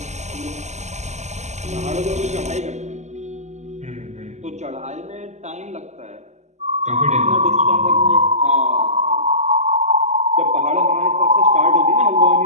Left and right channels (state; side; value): late; left; 0.33 ms